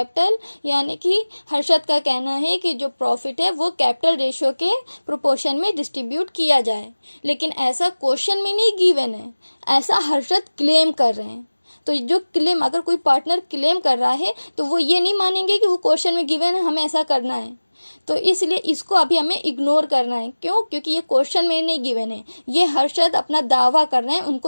यानी कि हर्षद का कहना है कि जो प्रॉफिट है वो कैपिटल रेशियो के प्रोपोर्शन में डिस्ट्रीब्यूट किया जाए। लेकिन ऐसा क्वेश्चन में नहीं गिवन है, ऐसा हर्षद क्लेम कर रहे हैं। तो जो क्लेम, अगर कोई पार्टनर क्लेम कर रहा है तो वो ये नहीं मानेंगे कि वो क्वेश्चन में गिवन है, हमें ऐसा करना है। तो इसलिए इसको अभी हमें इग्नोर करना है। क्यों? क्योंकि ये क्वेश्चन में नहीं गिवन है, ये हर्षद अपना दावा कर रहे हैं,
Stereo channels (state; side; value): inverted; both; correlation -1.00